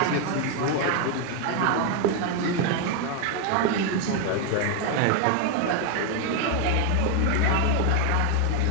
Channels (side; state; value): both; different; correlation 0.01